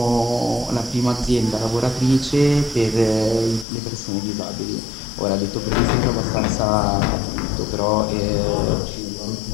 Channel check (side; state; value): right; drops out; at 3.7 s